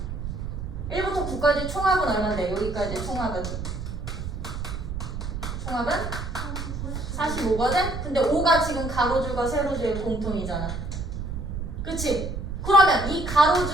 1부터 9까지 총합은 얼마인데? 여기까지 총합은? 총합은? 45거든? 근데 5가 지금 가로줄과 세로줄의 공통이잖아. 그치? 그러면 이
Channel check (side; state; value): right; noise; rumble, 6 dB below the sound